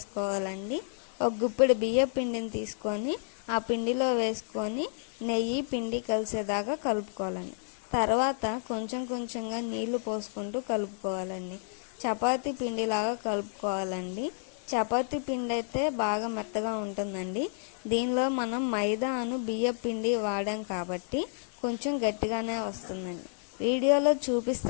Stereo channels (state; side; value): silent; right; digital silence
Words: ఒక గుప్పెడు బియ్యం పిండిని తీసుకొని ఆ పిండిలో వేసుకొని నెయ్యి పిండి కలిసేదాకా కలుపుకోవాలండి. తర్వాత కొంచెం కొంచెంగా నీళ్లు పోసుకుంటూ కలుపుకోవాలండి. చపాతీ పిండిలాగా కలుపుకోవాలండి. చపాతీ పిండి అయితే బాగా మెత్తగా ఉంటుందండి. దీనిలో మనం మైదాను బియ్యం పిండి వాడాం కాబట్టి కొంచెం గట్టిగానే వస్తుందండి. వీడియోలో